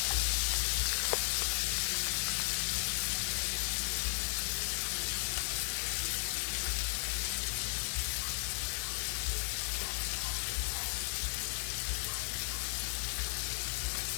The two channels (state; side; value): silent; right; digital silence